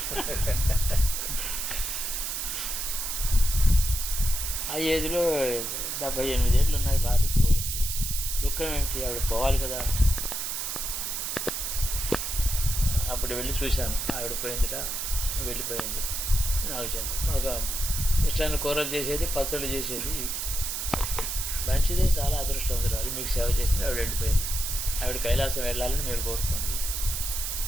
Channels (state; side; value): noise; right; hiss, 2 dB below the sound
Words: ఆ ఏజ్లో 78 ఏళ్ళు ఉన్నాయి, భార్యకి పోయింది. దుఃఖం ఏమిటి, ఆవిడ పోవాలి కదా. అప్పుడు వెళ్ళి చూశాను, ఆవిడ పోయిందిట, వెళ్ళిపోయింది. నాకు చెప్పండి, మాకు ఇష్టాన్ని కూరలు చేసేది, పచ్చళ్ళు చేసేది, మంచిదే, చాలా అదృష్టవంతురాలు, మీకు సేవ చేసింది. ఆవిడ వెళ్ళిపోయింది. ఆవిడ కైలాసం వెళ్ళాలని మీరు కోరుకోండి.